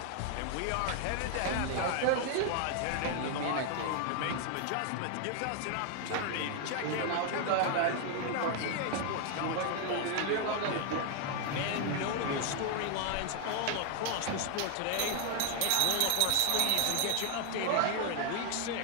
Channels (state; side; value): different; both; correlation 0.00